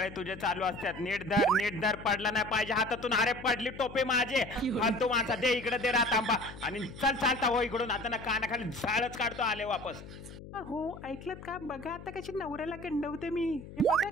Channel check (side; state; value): left; noise; hum, 14 dB below the sound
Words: तुझे चालू असतात. नीट धर पडला नाही पाहिजे हातातून. अरे पडली टोपे माझे. फालतू माणसा, दे इकडे, दे रात आंबा आणि चल चालता हो इकडून. आता ना कानाखाली झाडच काढतो आले वापस. हो ऐकलत का? बघा आता कशी नवऱ्याला गंडवते मी. हे बघा